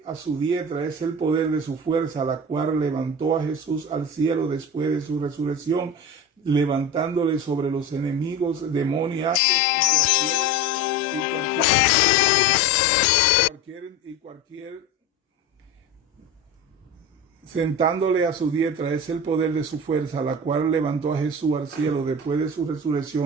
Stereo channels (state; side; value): normal; both; correlation 0.29